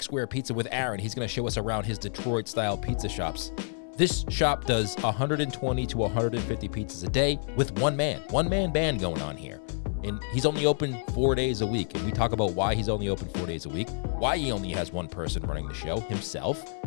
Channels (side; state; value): right; silent; 59 dB below the other